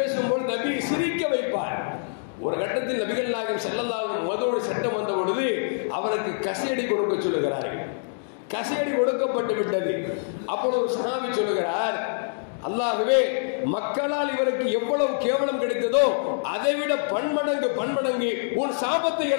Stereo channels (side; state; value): right; silent; digital silence